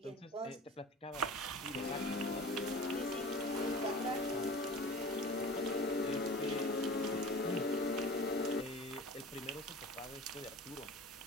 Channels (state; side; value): normal; both; correlation 0.38